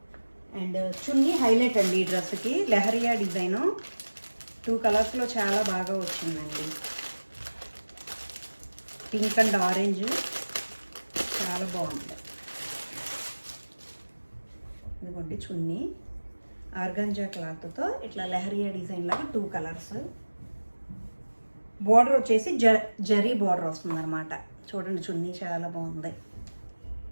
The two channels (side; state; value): both; inverted; correlation -1.00